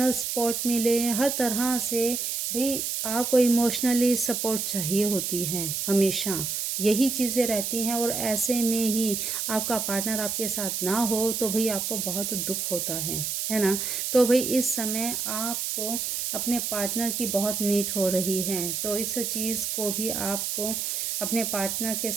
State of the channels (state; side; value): noise; right; hiss, 2 dB below the sound